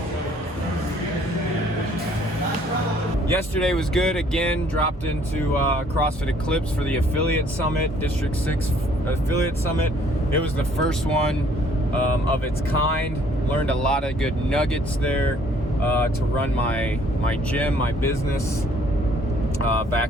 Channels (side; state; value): both; normal; correlation 0.60